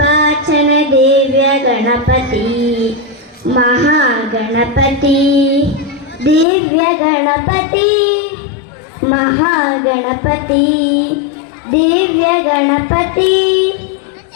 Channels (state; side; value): drops out; right; at 6.5 s